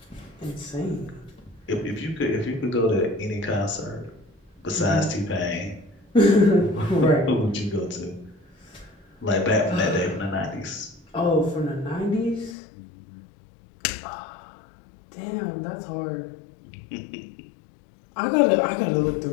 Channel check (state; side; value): drops out; right; at 12.6 s